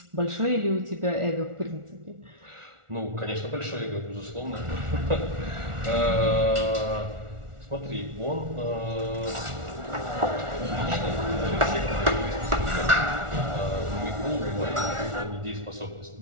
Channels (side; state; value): left; late; 1.4 ms